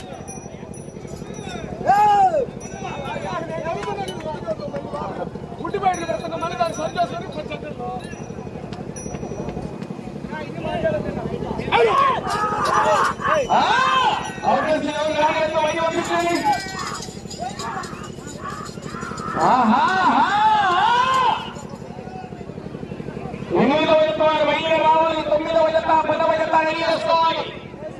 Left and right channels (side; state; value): both; identical; correlation 1.00